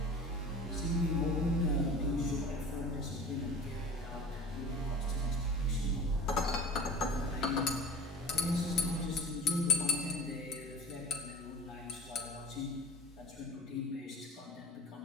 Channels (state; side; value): normal; both; correlation 0.37